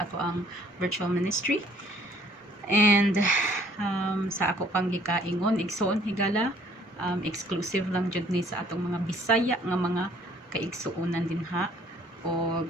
ato ang virtual ministry. And sa ako pang gikaingon igsoon higala exclusive lang jud ni sa atong mga Bisaya nga mga kaigsuonan din ha. O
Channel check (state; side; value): normal; both; correlation 0.59